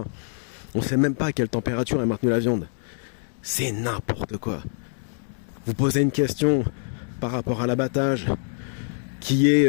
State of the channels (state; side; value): silent; right; digital silence